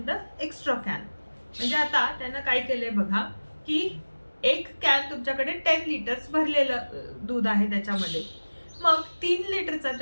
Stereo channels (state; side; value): inverted; both; correlation -1.00